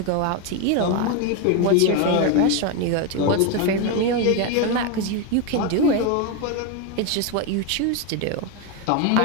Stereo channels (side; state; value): both; different; correlation 0.02